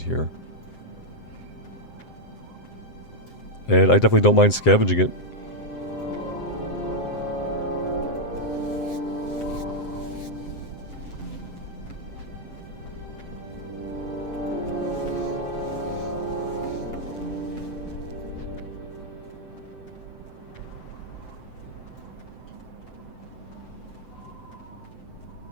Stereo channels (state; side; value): late; right; 7.7 ms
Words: here. And I definitely don't mind scavenging it.